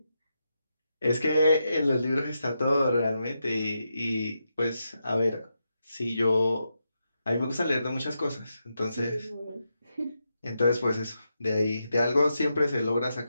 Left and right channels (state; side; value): inverted; both; correlation -0.85